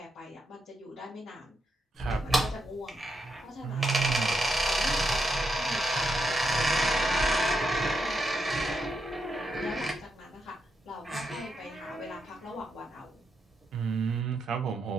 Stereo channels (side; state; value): both; normal; correlation 0.83